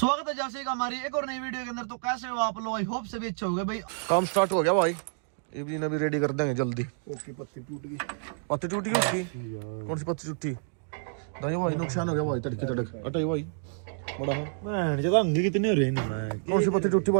है जैसे का हमारी एक और नई वीडियो के अंदर। तो कैसे हो आप लोग? आई होप से भी अच्छे हो गए भाई। काम स्टार्ट हो गया भाई, इवनिंग अभी रेडी कर देंगे जल्दी। ओके, पत्ती टूट गई। पत्ती टूट गई उसकी? कौन सी पत्ती टूटी? दाई भाई नुकसान हो गया भाई, तड़के तड़क अटाई भाई बड़ा है। मैं जब अंग कितने हो रहे हैं मैं कौन सी पत्ती टूटी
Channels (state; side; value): silent; left; digital silence